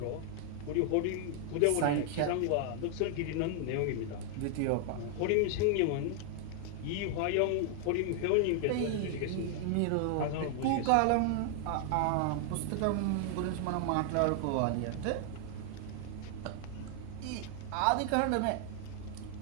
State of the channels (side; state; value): both; different; correlation 0.00